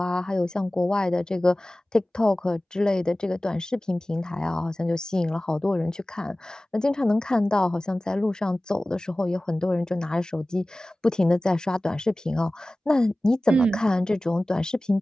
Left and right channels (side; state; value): both; normal; correlation 0.97